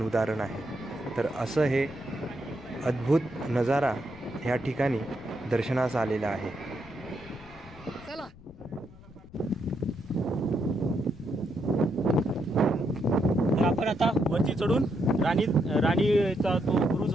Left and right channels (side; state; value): left; noise; rumble, 21 dB below the sound